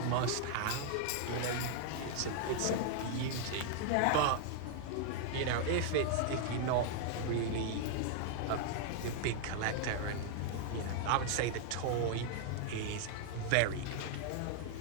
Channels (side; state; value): both; different; correlation 0.00